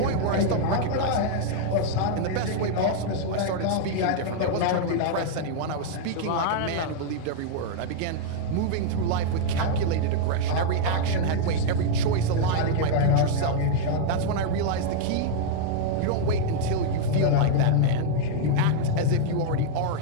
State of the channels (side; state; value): both; different; correlation -0.01